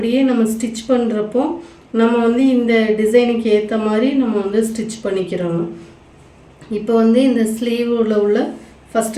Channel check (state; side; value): identical; both; correlation 1.00